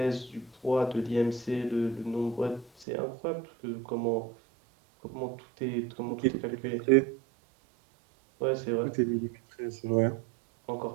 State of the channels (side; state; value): left; drops out; at 2.9 s